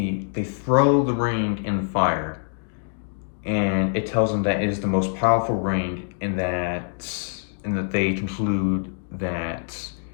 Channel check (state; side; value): silent; right; 62 dB below the other